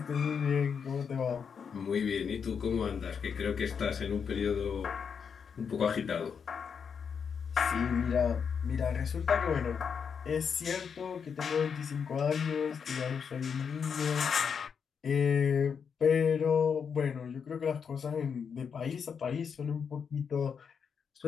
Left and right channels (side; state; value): right; quieter; 6.6 dB